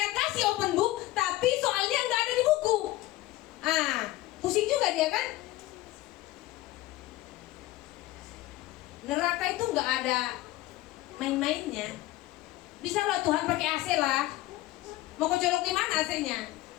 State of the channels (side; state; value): right; quieter; 17.2 dB